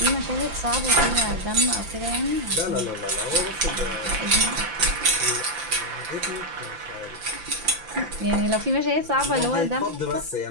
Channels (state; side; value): late; left; 5.8 ms